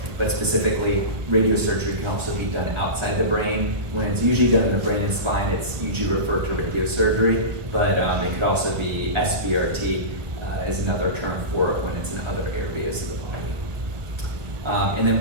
but specifically, radiosurgery can also be done outside the brain. When it's usually done in the brain and spine, it's usually referred to radiosurgery, but it could also be SBRT is another term for it when it's in other areas of the body. And then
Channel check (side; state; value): left; late; 1.3 ms